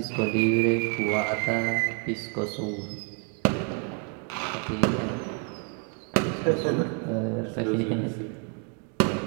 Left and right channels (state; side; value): quieter; left; 38.1 dB